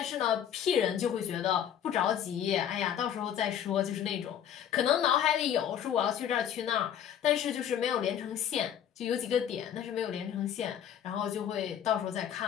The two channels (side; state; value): right; quieter; 9.6 dB